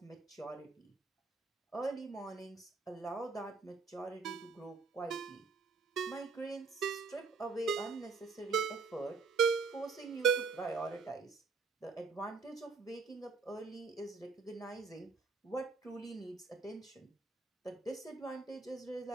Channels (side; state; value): left; quieter; 4.8 dB